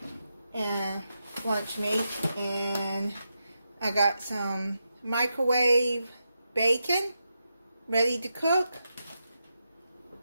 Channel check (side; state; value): both; inverted; correlation -0.86